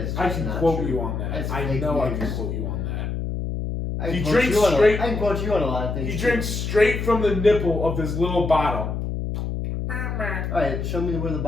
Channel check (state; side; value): noise; left; hum, 3 dB below the sound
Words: can quote you on that. I know I can quote you on that. I can quote you on a lot of things. He drinks straight from the nipple of this little bottle. Alright, show me where the